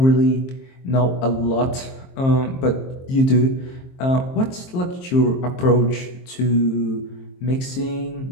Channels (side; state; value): right; late; 23 ms